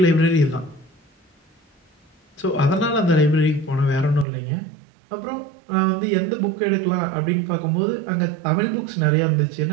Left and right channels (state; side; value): drops out; left; at 4.2 s